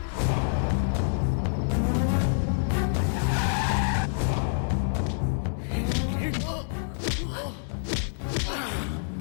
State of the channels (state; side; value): silent; right; 60 dB below the other